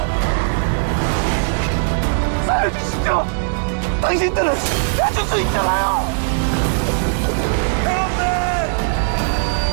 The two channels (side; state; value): left; silent; digital silence